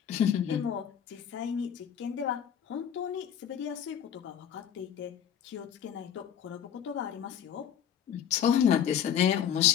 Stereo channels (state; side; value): quieter; right; 9.0 dB